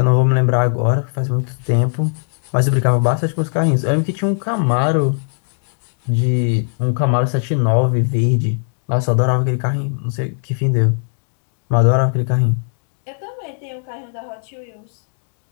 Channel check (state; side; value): silent; right; digital silence